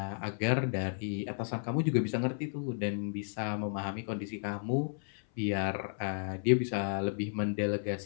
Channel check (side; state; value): right; silent; 56 dB below the other